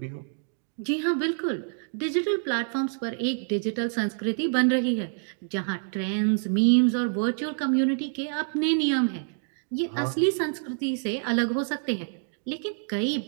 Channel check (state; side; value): silent; left; digital silence